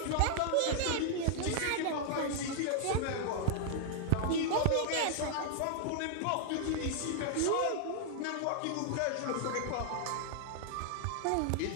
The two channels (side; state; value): both; different; correlation 0.00